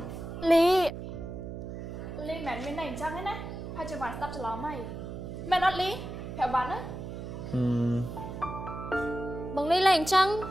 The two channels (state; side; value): noise; right; hum, 8 dB below the sound